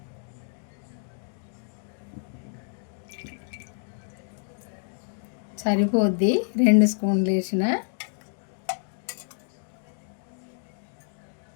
సరిపోద్ది 2 స్పూన్లు వేసిన.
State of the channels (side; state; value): right; silent; digital silence